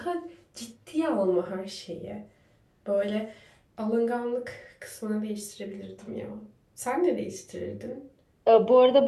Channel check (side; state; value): both; identical; correlation 1.00